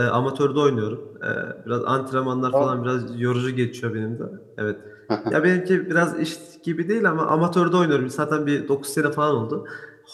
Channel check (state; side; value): identical; both; correlation 1.00